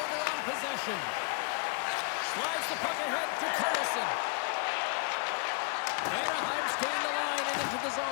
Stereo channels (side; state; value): right; quieter; 39.4 dB